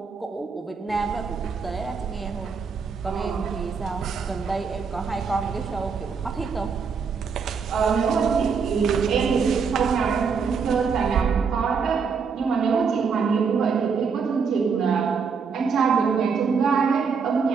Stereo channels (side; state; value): left; quieter; 5.7 dB